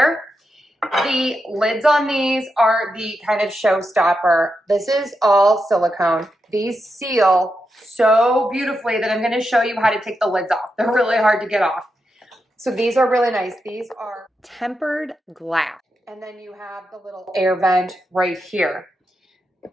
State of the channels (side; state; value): both; normal; correlation 0.86